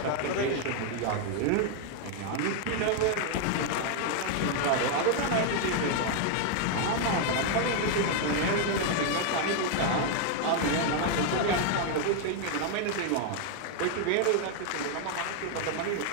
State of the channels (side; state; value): both; different; correlation 0.00